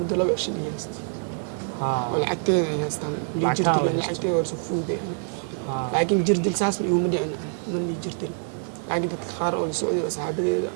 laba cisho dhigayst lacagteeda ay haystaan jirkeeda lacagteeda war soo fuuday لكن جردل ساس يوم دعنا من اللي جردل لكن تتخار أو السعودية وصحابي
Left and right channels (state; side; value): silent; left; digital silence